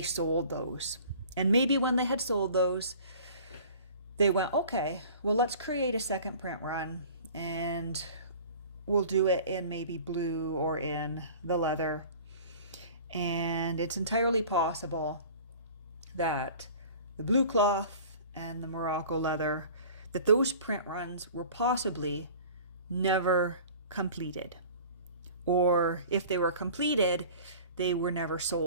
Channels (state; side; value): inverted; both; correlation -0.44